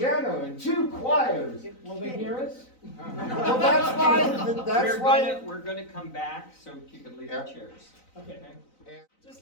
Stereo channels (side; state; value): right; late; 3.9 ms